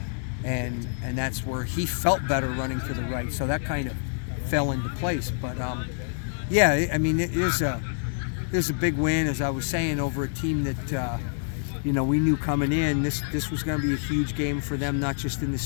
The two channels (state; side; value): silent; right; digital silence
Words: and that's where he felt better running to the right. So that kind of fell into place. But yeah, I mean, it is a big win, as I was saying, over a team that we knew coming in this was going to be a huge game for them, not just in the